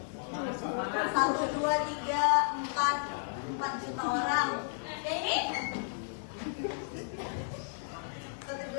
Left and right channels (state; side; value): silent; right; digital silence